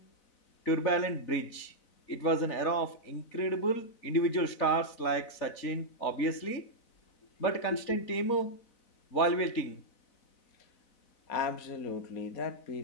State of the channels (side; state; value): right; late; 4.0 ms